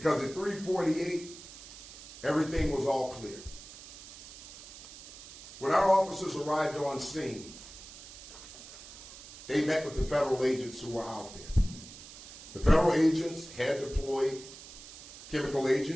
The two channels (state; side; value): noise; right; hiss, 16 dB below the sound